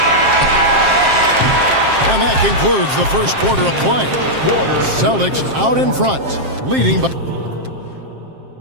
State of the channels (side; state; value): left; late; 7.5 ms